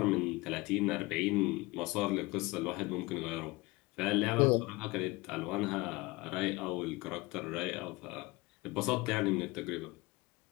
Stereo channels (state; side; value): quieter; right; 22.5 dB